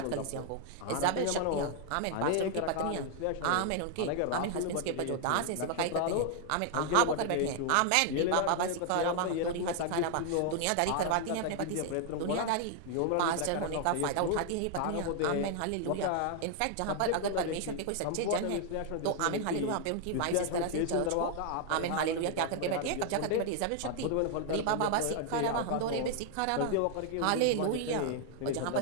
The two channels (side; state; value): both; different; correlation 0.00